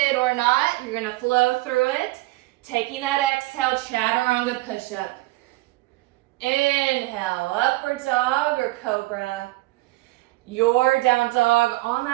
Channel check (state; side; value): quieter; left; 20.5 dB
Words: or not. You're going to flow through it. Taking that exhale. Chaturanga push-up. Inhale. Upward dog or cobra. Your down dog on